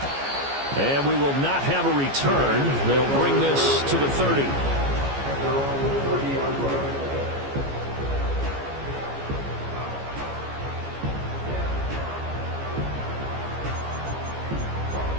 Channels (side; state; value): left; late; 15 ms